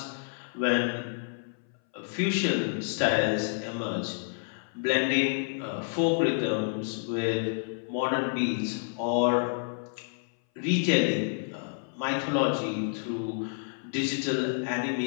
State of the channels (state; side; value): silent; right; 58 dB below the other